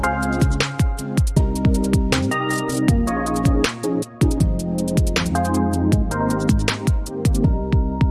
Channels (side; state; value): both; identical; correlation 1.00